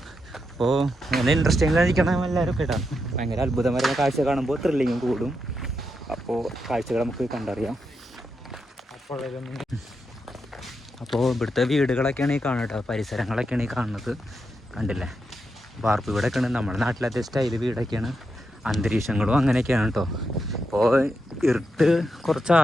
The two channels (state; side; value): normal; both; correlation 0.85